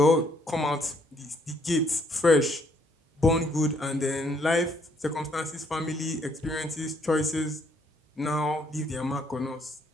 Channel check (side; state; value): both; normal; correlation 0.68